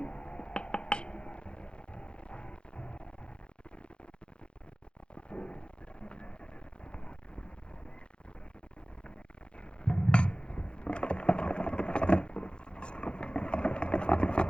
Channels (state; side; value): late; right; 0.054 ms